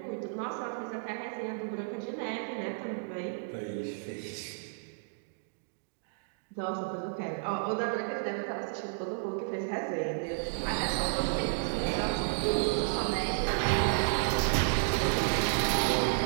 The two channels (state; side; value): silent; left; digital silence